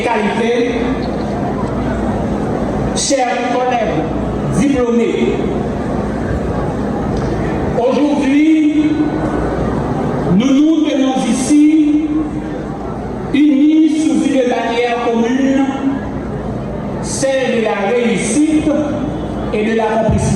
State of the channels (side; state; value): both; identical; correlation 1.00